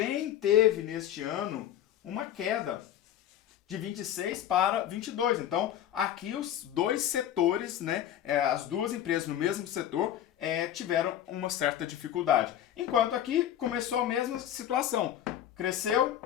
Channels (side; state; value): right; quieter; 11.0 dB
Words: teve neste ano uma queda de 26 para 22. Então, aqui os dois setores, né, as duas empresas no mesmo setor tiveram uma certa dificuldade. Enquanto aqui começou a mesma situação. Cresceu,